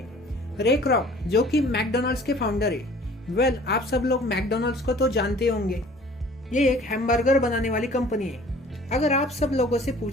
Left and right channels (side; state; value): both; normal; correlation 0.50